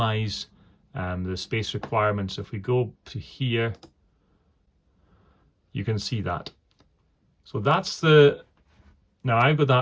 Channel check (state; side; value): identical; both; correlation 1.00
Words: the space requirements. If we go to here, you can see that. So that's now I've got